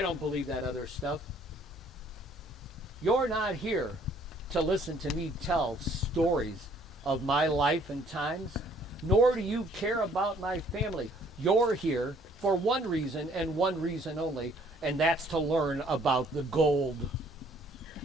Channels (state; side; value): normal; both; correlation 0.60